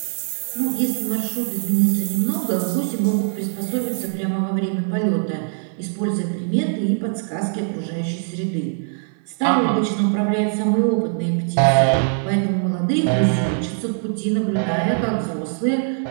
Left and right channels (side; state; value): left; silent; 56 dB below the other